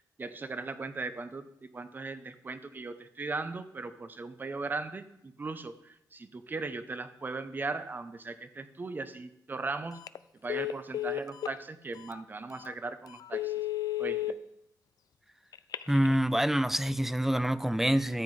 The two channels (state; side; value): normal; both; correlation 0.82